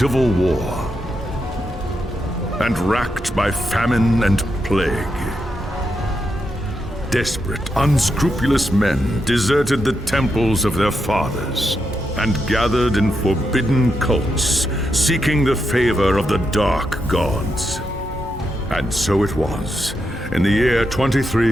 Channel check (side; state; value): both; normal; correlation 0.84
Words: war, and racked by famine and plague. Desperate, unscrupulous men deserted the temples of their fathers and gathered in forbidden cults, seeking the favor of the dark gods. And so it was, in the year